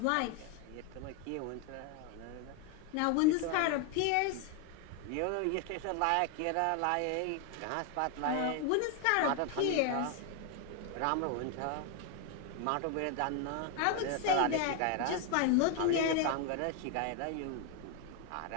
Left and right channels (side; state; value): both; different; correlation 0.01